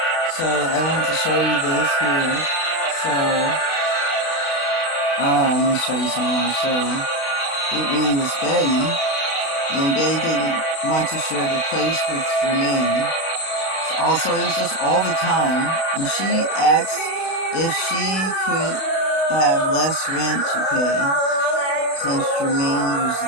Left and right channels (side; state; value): right; late; 32 ms